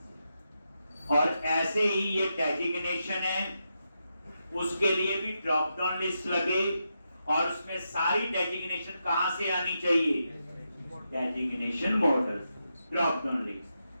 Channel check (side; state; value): both; inverted; correlation -0.85